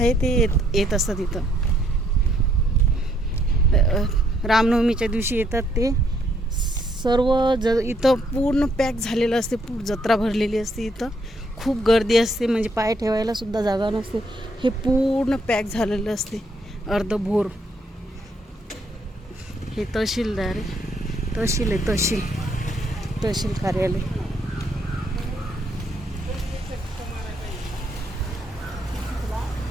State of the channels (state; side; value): normal; both; correlation 0.71